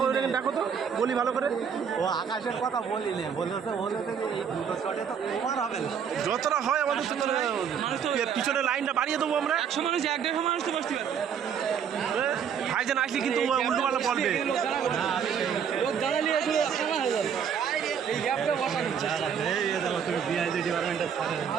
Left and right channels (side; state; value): left; quieter; 7.6 dB